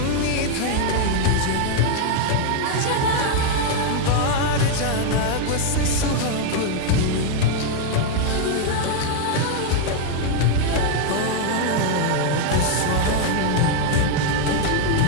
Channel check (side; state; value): both; different; correlation 0.00